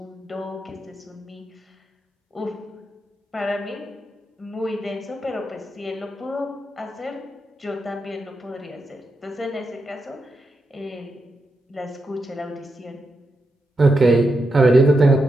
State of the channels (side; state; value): both; normal; correlation 0.85